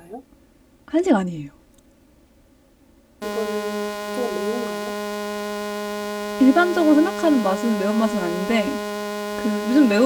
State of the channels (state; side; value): identical; both; correlation 1.00